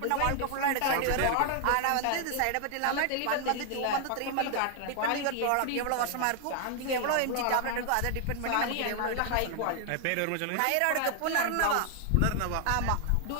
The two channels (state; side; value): different; both; correlation 0.00